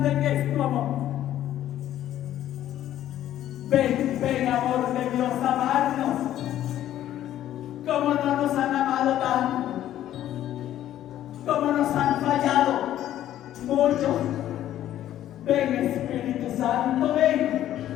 que es tu amor. Ven, ven amor de Dios, amarnos como no nos han amado tanto, como nos han fallado muchos. Ven Espíritu Santo, ven.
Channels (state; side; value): quieter; right; 12.3 dB